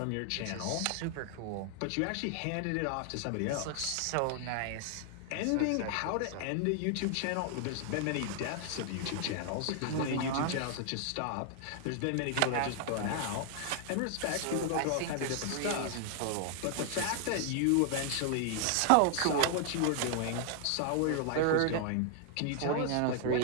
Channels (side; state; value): both; different; correlation 0.00